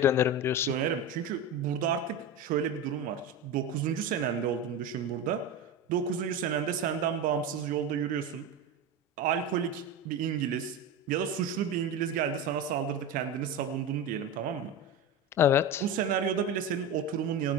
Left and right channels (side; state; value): both; normal; correlation 0.22